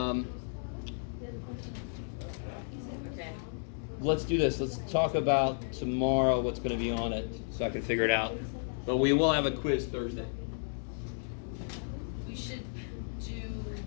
Okay. Let's do this. Let's talk about tomorrow what's going to be on it so I can figure it out. But we will have a quiz Thursday. We should do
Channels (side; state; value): right; silent; digital silence